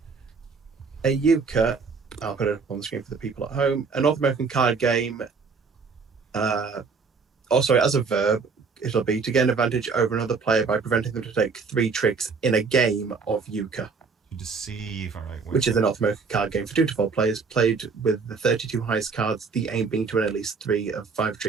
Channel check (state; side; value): quieter; left; 5.0 dB